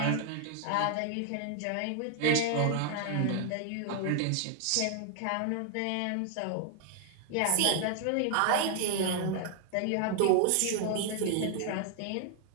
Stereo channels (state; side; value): different; both; correlation 0.00